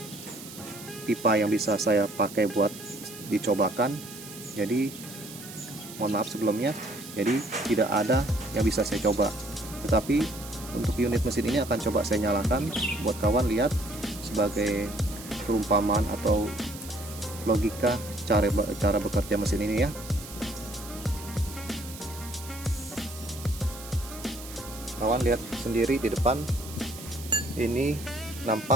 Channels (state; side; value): noise; right; hiss, 14 dB below the sound